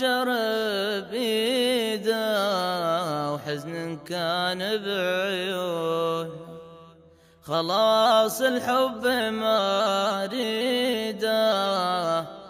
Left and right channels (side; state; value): both; identical; correlation 1.00